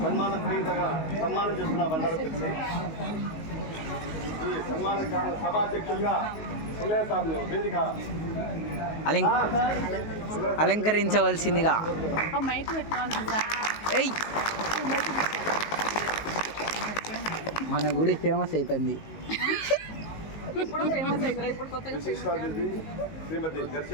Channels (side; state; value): right; late; 19 ms